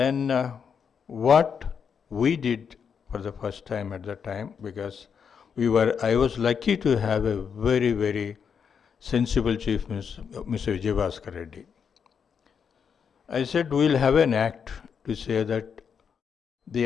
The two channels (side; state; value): right; quieter; 6.8 dB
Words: what we did for the first time at that time, because I was lucky to have a very, very sensible Chief Minister, Mr. Vijayabhaskar Reddy. I said, we'll have an act to say that the